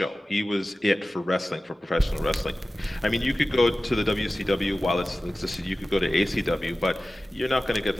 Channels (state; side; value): normal; both; correlation 0.96